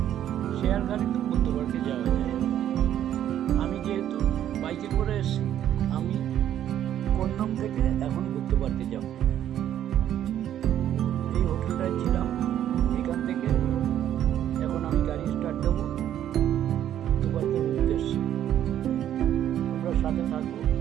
শেয়ার গাড়িতে বুদ্ধ পার্কে যাওয়া যায়। আমি যেহেতু বাইকে করে এসেছি, আমি কন্নম থেকে এখন বুদ্ধ পার্কে যাব। এই হোটেলটায় ছিলাম, এখান থেকে এখন আমি গাড়ি স্টার্ট দেবো বুদ্ধ পার্কের উদ্দেশ্যে। তোমরা সাথে থাকো,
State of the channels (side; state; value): left; quieter; 11.0 dB